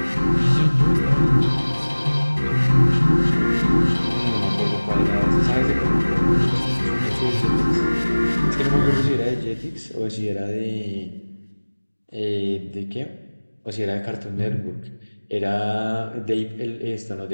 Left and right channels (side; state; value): both; inverted; correlation -1.00